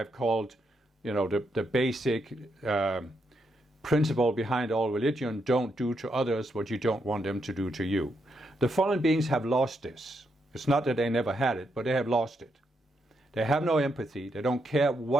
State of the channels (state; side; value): normal; both; correlation 0.80